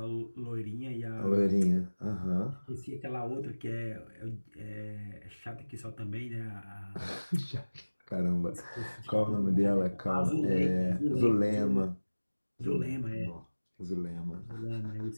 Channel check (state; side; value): inverted; both; correlation -1.00